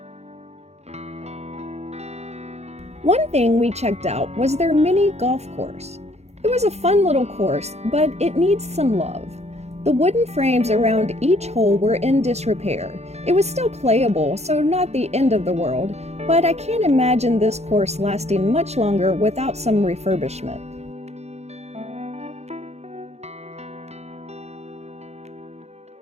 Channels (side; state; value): left; late; 0.31 ms